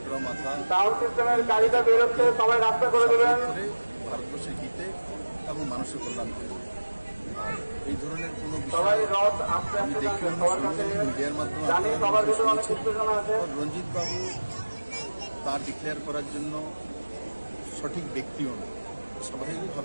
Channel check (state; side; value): inverted; both; correlation -1.00